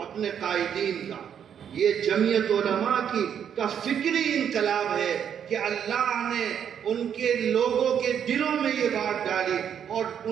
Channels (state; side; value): quieter; left; 8.5 dB